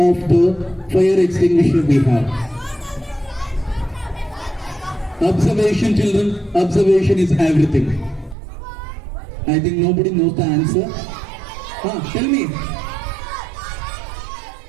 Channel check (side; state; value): left; drops out; at 8.3 s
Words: the fire extinguisher we have? Observation, children. Observation is everything. I think nobody knows the answer. Tell me.